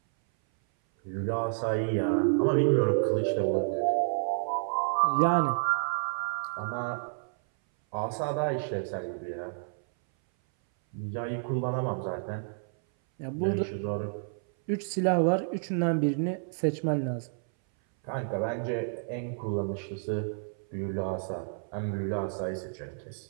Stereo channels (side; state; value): left; silent; 58 dB below the other